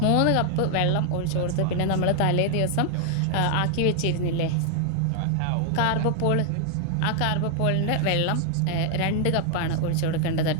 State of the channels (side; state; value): both; different; correlation 0.00